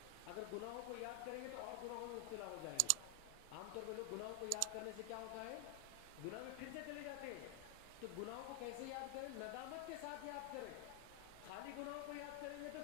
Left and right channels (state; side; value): different; both; correlation 0.00